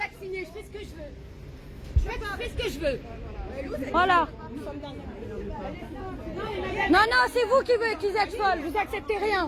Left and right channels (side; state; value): both; identical; correlation 1.00